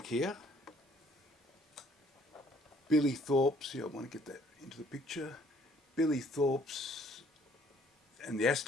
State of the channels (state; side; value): normal; both; correlation 0.61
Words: here, Billy Thorpe's. I want to get that into the picture. Billy Thorpe's and the